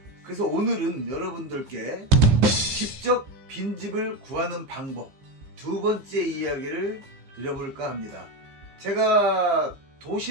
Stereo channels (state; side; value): late; left; 15 ms